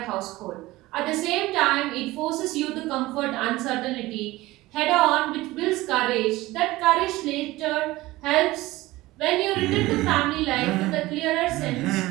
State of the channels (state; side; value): quieter; left; 18.7 dB